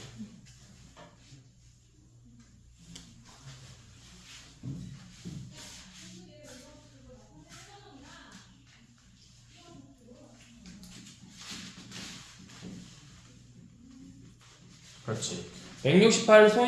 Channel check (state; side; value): identical; both; correlation 1.00